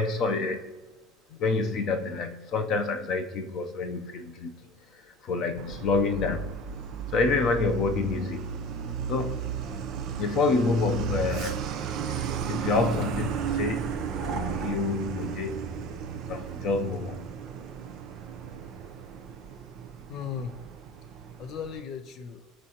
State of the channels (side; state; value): both; normal; correlation 0.37